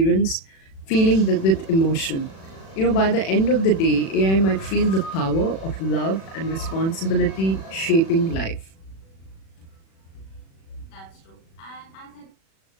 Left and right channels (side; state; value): right; late; 36 ms